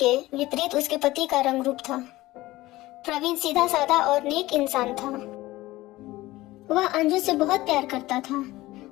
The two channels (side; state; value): right; quieter; 18.1 dB